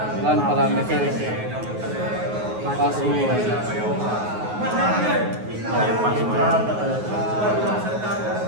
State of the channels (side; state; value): left; late; 9.4 ms